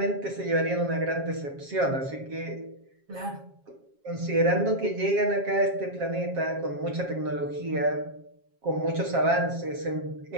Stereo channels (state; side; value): late; left; 7.4 ms